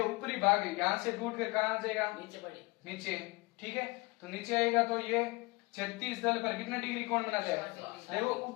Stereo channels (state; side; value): quieter; right; 25.4 dB